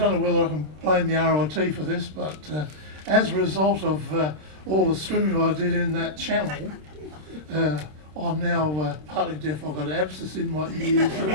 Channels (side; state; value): left; late; 26 ms